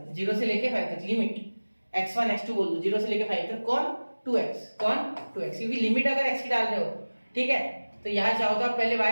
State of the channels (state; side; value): inverted; both; correlation -1.00